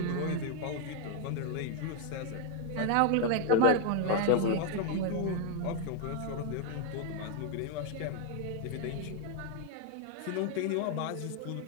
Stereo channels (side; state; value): both; different; correlation 0.01